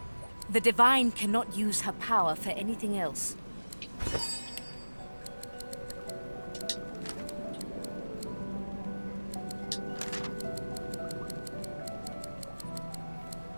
The divine cannot use her power for anything else.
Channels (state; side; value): inverted; both; correlation -1.00